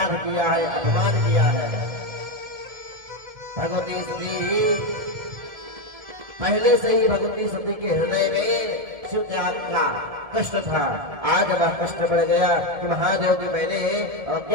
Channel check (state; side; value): late; left; 1.7 ms